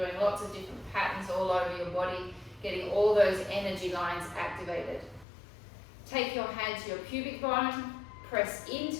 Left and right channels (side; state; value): right; drops out; at 5.2 s